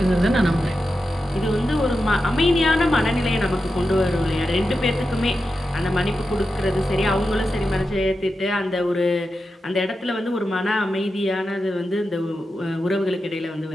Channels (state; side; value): normal; both; correlation 0.90